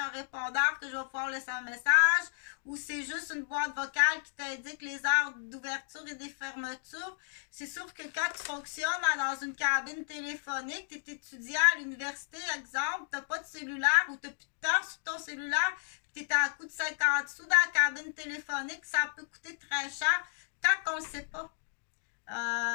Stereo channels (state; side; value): silent; right; digital silence